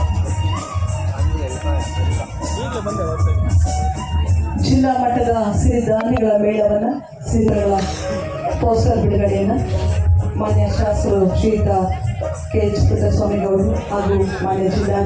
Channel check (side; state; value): both; identical; correlation 1.00